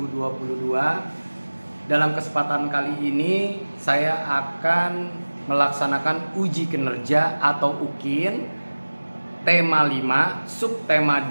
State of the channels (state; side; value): inverted; both; correlation -1.00